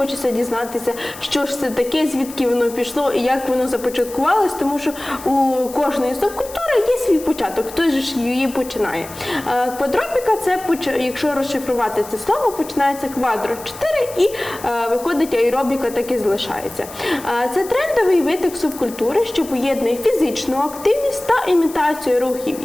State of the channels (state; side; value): noise; left; hiss, 16 dB below the sound